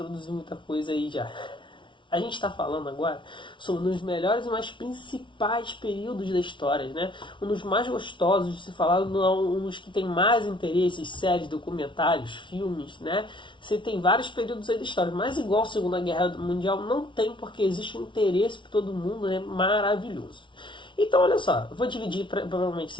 muita coisa aí já. A gente está falando agora sobre um dos melhores e mais principais períodos da história, né? Um dos mais gostosos de se falar, um dos que tem mais interesses, séries, documentários, filmes, né? Você tem vários períodos aí da história, mas igual a Segunda Guerra Mundial não tem, porque existe um interesse para todo mundo, né? Maravilhoso. Então, olha só, eu vou dividir provavelmente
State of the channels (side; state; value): right; late; 0.24 ms